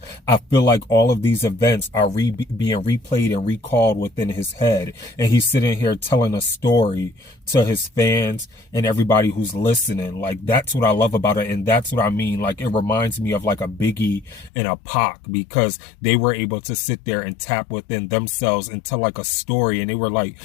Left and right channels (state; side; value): drops out; right; at 14.5 s